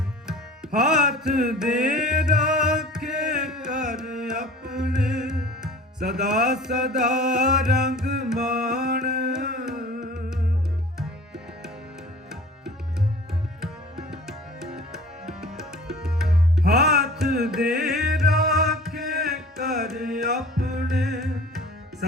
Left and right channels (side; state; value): both; normal; correlation 0.44